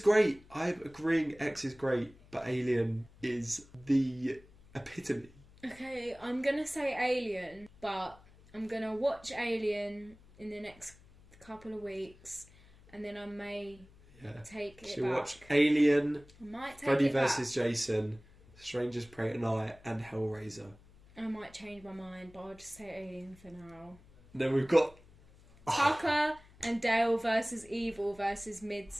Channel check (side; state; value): left; noise; hum, 25 dB below the sound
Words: I'm agreeing X is great, but Alien is the epitome. Okay, I'm gonna say Alien, but I'm gonna watch Alien in the next couple of weeks, and then I may Yeah. take it She'll back. watch Alien, I might take Freddy it back. vs. Jason, Strangers Prey Tonight, and Hellraiser. I might change my mind, but I'll just say Alien for now. And then we've got... Tucker and Dale versus Evil versus